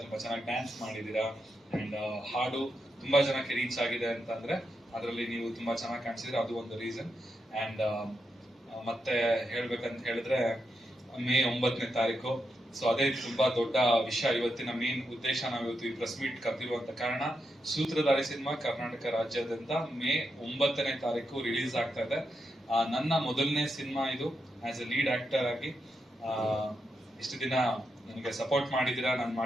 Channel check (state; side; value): normal; both; correlation 0.85